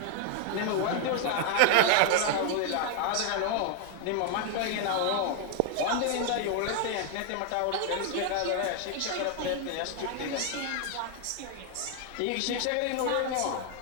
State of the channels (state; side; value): different; both; correlation 0.00